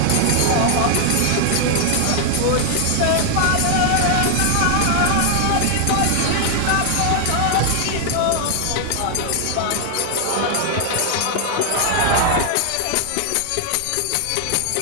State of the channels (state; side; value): different; both; correlation 0.00